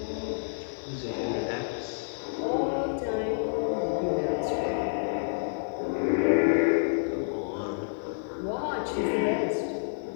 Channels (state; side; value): silent; right; 59 dB below the other